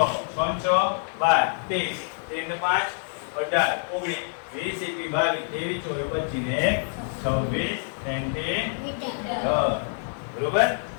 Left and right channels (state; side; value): silent; right; digital silence